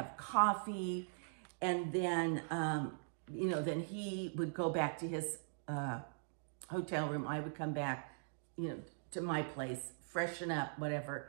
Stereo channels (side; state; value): left; silent; digital silence